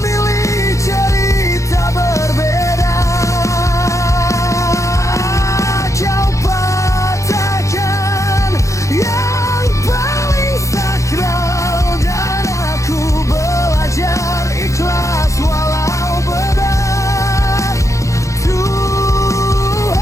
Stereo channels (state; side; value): late; right; 0.15 ms